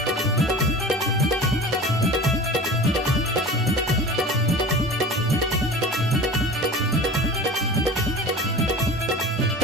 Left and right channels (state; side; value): normal; both; correlation 0.36